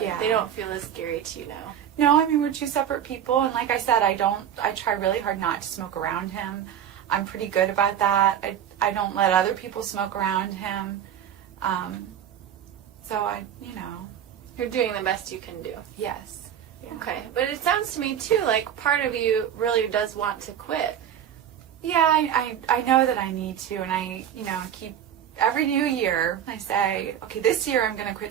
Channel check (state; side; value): quieter; left; 9.7 dB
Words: yeah. They don't feel as scary to you now. No, I mean, we're two separate people, and like I said, I try really hard not to smoke around him. I'm pretty good about that. I don't let other people smoke around him. So you're doing the best you can do. Yes. Yeah. Okay, but it sounds to me too like part of you really does want to quit. Yeah, I know that I need to, and I keep every new year I say, okay, this year I'm going to